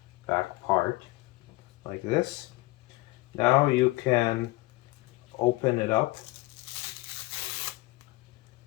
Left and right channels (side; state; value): right; quieter; 20.9 dB